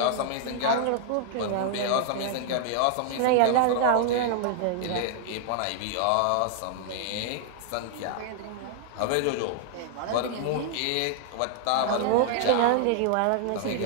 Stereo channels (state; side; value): different; both; correlation 0.00